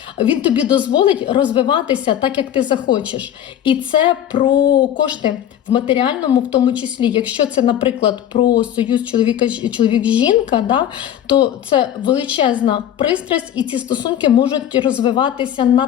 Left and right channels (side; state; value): right; quieter; 10.6 dB